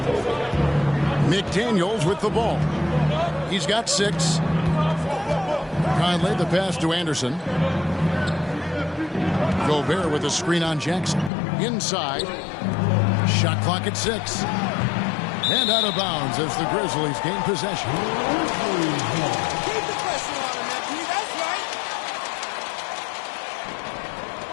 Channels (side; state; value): right; drops out; at 11.3 s